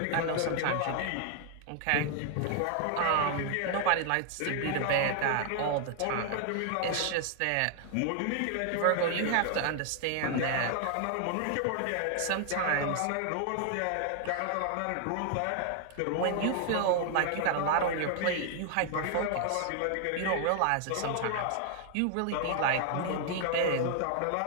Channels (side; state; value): both; different; correlation 0.00